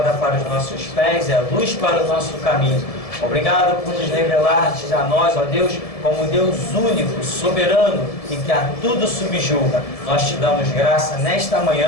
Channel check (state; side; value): late; right; 1.7 ms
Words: para os nossos pés e a luz para o nosso caminho. Obrigado por nos revelar-te a nós, ó Deus, como Deus único, soberano e que a tudo subjuga. Nós te damos graça nesta